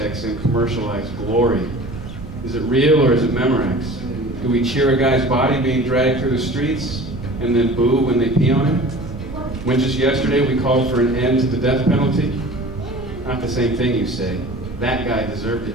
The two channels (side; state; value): right; noise; rumble, 13 dB below the sound